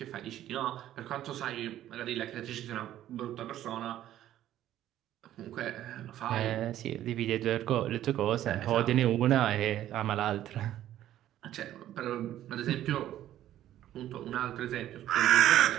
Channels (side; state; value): left; quieter; 12.6 dB